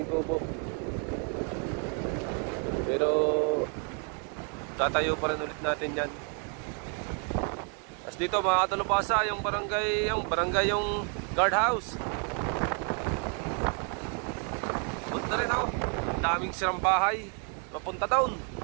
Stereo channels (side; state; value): left; quieter; 39.6 dB